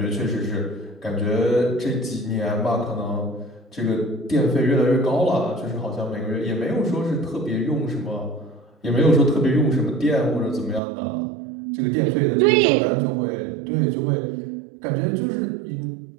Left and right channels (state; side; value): drops out; left; at 10.8 s